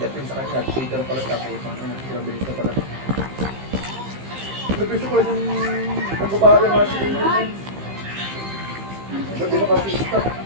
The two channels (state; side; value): late; left; 15 ms